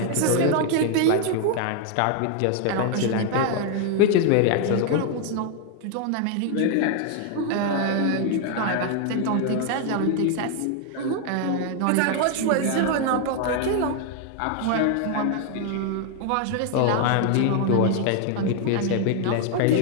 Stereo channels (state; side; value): different; both; correlation 0.00